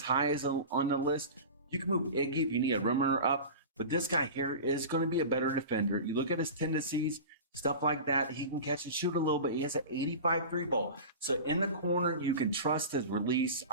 as on the list. You can move Iggy if you need a rim runner up. But this guy here is going to be a better defender. You look at his tendencies, stuff like that. He can catch and shoot a little bit. He has an 85 3 ball. So in the corner, you can trust his release.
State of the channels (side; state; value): both; inverted; correlation -0.32